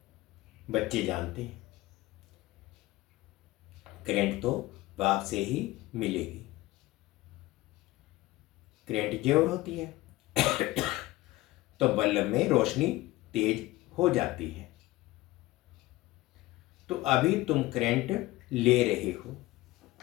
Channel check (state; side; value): quieter; right; 18.6 dB